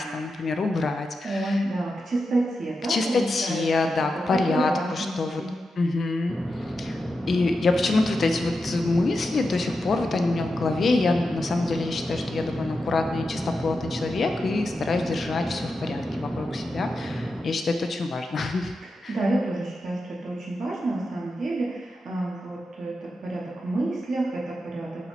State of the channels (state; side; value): normal; both; correlation 0.89